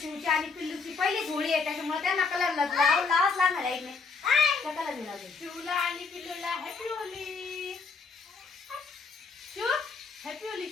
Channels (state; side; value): quieter; right; 4.6 dB